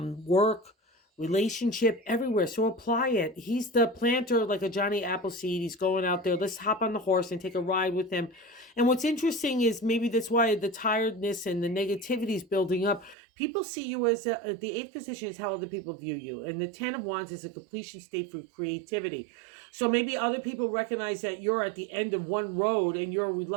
relationship, everywhere. So apply it. He's the planter, like a Johnny Appleseed. He's going out there. Let's hop on the horse and take a ride with him. And what's interesting is maybe that's why the tiredness and the negativity is building up. People see you as the 8th position is how other people view you. And the 10 of Wands is a completion state for creativity. So maybe other people recognize that you're at the end of one road and you're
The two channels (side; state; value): left; drops out; at 13.2 s